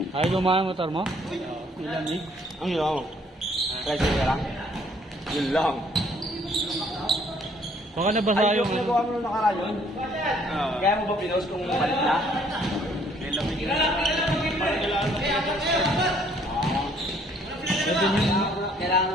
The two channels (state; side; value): normal; both; correlation 0.62